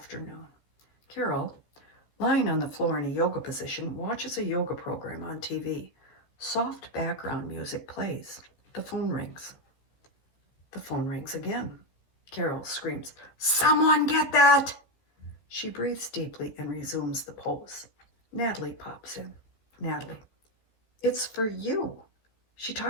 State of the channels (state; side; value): late; right; 14 ms